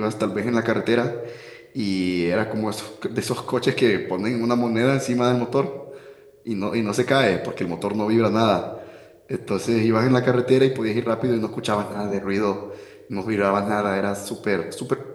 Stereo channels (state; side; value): identical; both; correlation 1.00